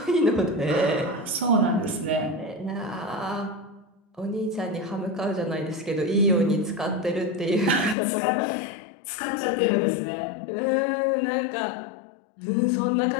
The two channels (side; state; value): right; drops out; at 8.0 s